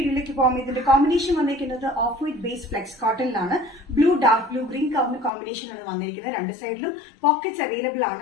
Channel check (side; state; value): right; drops out; at 5.3 s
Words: പോകാം. ഇതിന്റെ കോമ്പിനേഷൻ വന്നിരിക്കുന്നത് ഓഫ് വൈറ്റ് ബേസ് ഫ്ലെക്സ് കോട്ടണിലാണ്. Blue, dark blue, green combination ആണ് വന്നിരിക്കുന്നത്. രണ്ട് സൈഡിലും പോക്കറ്റ്സ് അവൈലബിൾ